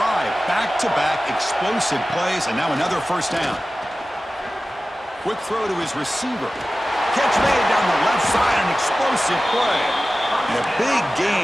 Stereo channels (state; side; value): normal; both; correlation 0.96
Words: Back-to-back explosive plays, and now another first down. Quick throw to his receiver. Catch made down the left side, an explosive play. And a big